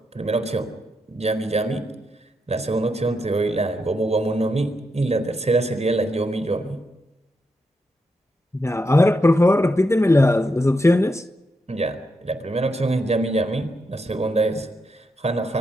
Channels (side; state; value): both; normal; correlation 0.83